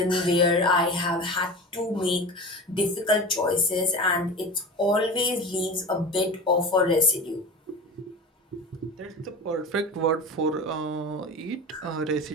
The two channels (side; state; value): both; normal; correlation 0.31